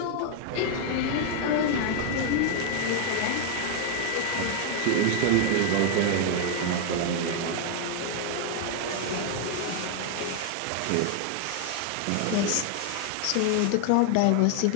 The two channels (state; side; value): different; both; correlation 0.00